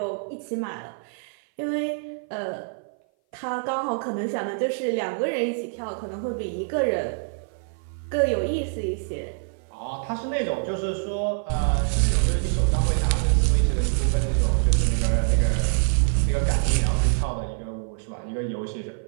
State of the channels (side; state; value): left; silent; 57 dB below the other